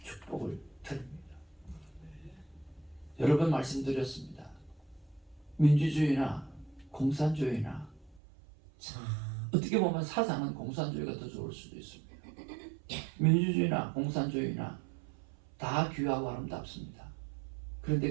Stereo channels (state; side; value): drops out; left; at 8.2 s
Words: 축복을 드립니다. 여러 번 말씀드렸습니다. 민주주의나 공산주의나 참 어떻게 보면 사상은 공산주의가 더 좋을 수도 있습니다. 민주주의나 공산주의나 다 귀하고 아름답습니다.